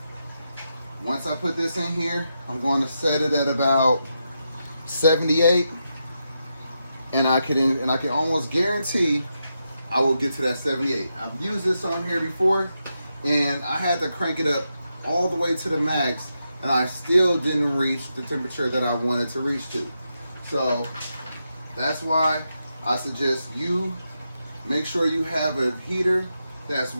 once I put this in here, I'm going to set it at about 78, and I can almost guarantee I will get to that 78. I've used this on here before, and I had to crank it up all the way to the max, and I still didn't reach the temperature that I wanted to reach to. So that's why I suggest you make sure you have a heater that's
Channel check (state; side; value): inverted; both; correlation -0.85